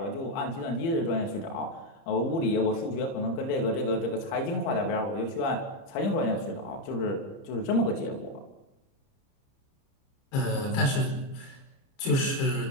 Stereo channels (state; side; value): late; right; 29 ms